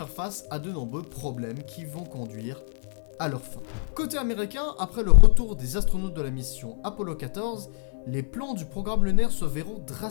face à de nombreux problèmes qui vont conduire à leur fin. Côté américain, après le retour des astronautes de la mission Apollo 14, les plans du programme lunaire se verront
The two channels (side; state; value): right; silent; 61 dB below the other